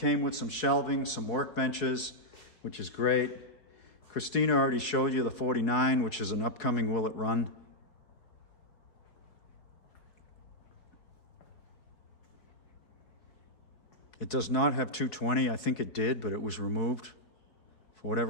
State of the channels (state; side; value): late; right; 4.6 ms